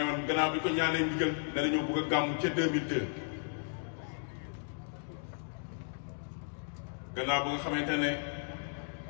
gannaaw bi ko ñaanee ndigal ne dañoo bëgg a gàmmu ca 2002 gannaaw ba nga xamante ne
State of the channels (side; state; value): right; silent; digital silence